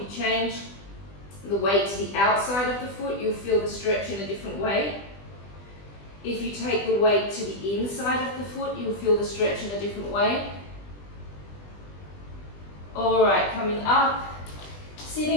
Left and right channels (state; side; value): late; right; 20 ms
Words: you change the weight to the outside of the foot, you'll feel the stretch in a different way. If you take the weight to the inside of the foot, you'll feel the stretch in a different way. Alright, coming up.